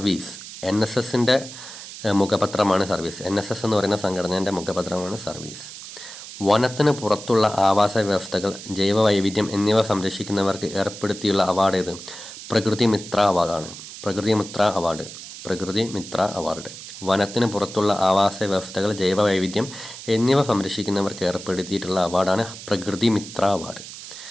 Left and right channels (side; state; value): right; noise; hiss, 13 dB below the sound